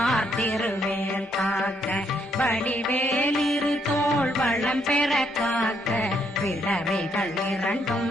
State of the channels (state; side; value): normal; both; correlation 0.73